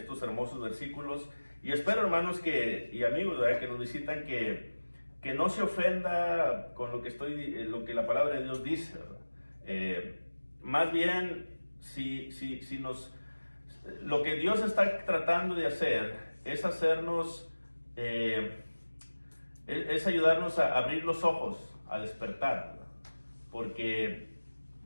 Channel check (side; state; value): both; inverted; correlation -1.00